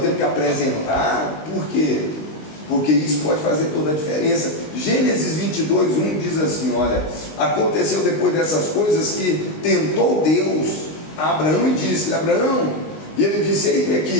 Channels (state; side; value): late; right; 19 ms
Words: temos que apresentar. Por quê? Porque isso pode fazer toda a diferença. Gênesis 22:1 diz assim, olha, aconteceu depois dessas coisas que tentou Deus a Abraão e disse, Abraão, e ele disse, eis-me